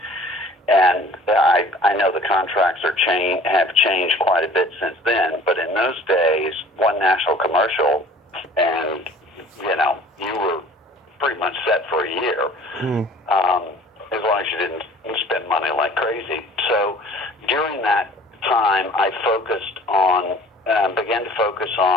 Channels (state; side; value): normal; both; correlation 0.49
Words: And I know the contracts have changed quite a bit since then, but in those days, one national commercial, and you were pretty much set for a year, as long as you didn't spend money like crazy. So during that time, I began to focus